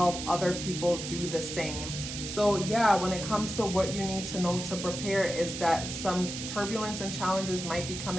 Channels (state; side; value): noise; right; hiss, 7 dB below the sound